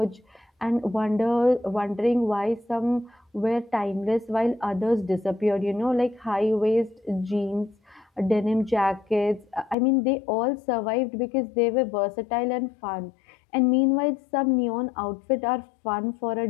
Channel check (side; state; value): right; drops out; at 9.8 s